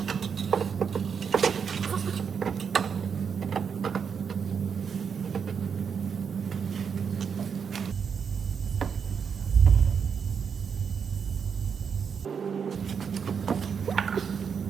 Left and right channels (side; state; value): left; quieter; 6.7 dB